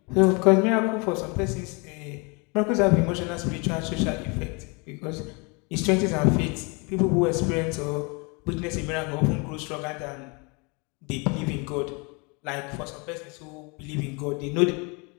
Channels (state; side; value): quieter; right; 30.8 dB